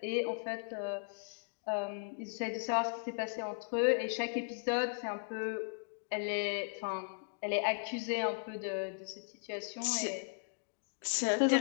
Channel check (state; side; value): silent; right; digital silence